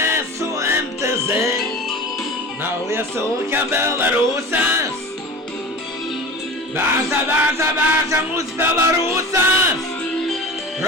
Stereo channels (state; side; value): normal; both; correlation 0.34